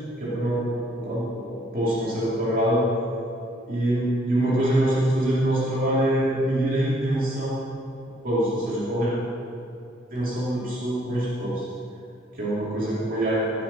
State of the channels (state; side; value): normal; both; correlation 0.64